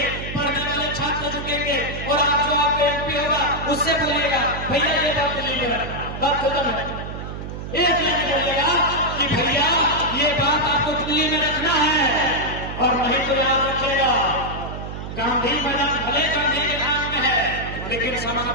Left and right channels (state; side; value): noise; right; hum, 8 dB below the sound